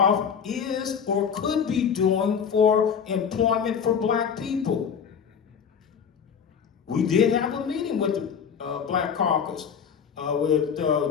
is or could be doing for employment for black people? We did have a meeting with the Black Caucus, with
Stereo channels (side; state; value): right; quieter; 7.0 dB